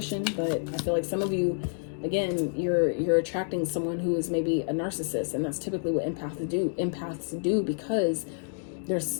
But I feel like some of you, again, you're attracting someone who is maybe a narcissist. And that's typically what empaths do because they're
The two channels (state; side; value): silent; right; digital silence